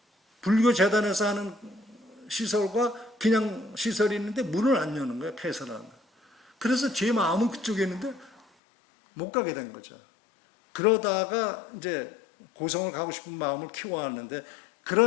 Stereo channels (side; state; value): right; drops out; at 8.4 s